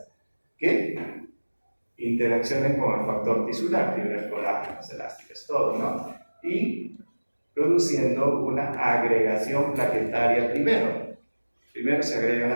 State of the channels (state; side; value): inverted; both; correlation -1.00